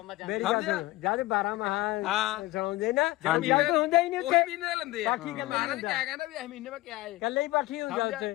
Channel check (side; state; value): right; quieter; 18.6 dB